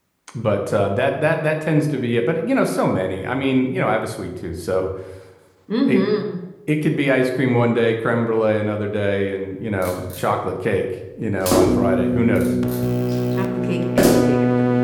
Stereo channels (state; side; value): identical; both; correlation 1.00